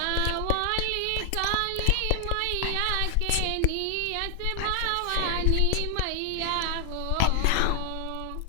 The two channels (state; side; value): different; both; correlation 0.00